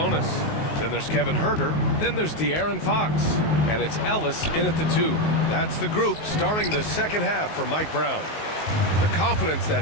Then there's Kevin Huerter. Then there's De'Aaron Fox. And it's Ellis in at the 2. That's the group starting the second half for Mike Brown. The confidence that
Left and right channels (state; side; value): late; right; 19 ms